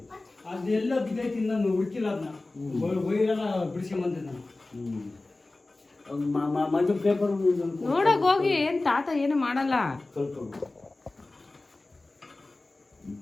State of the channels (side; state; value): right; quieter; 3.1 dB